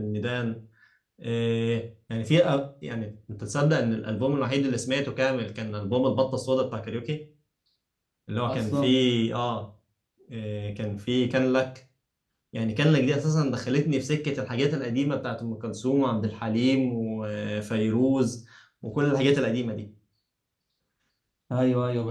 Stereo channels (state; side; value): identical; both; correlation 1.00